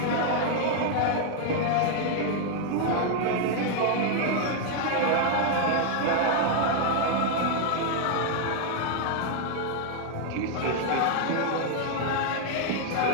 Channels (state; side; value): different; both; correlation 0.00